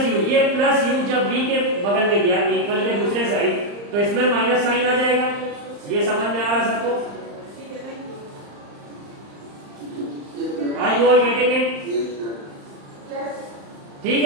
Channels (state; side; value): late; left; 35 ms